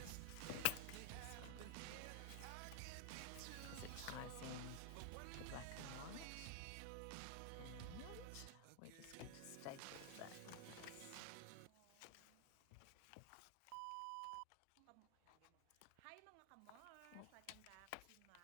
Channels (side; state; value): both; different; correlation 0.00